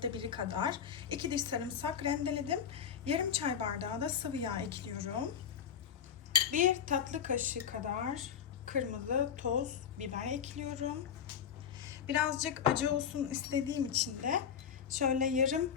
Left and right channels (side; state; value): right; quieter; 8.1 dB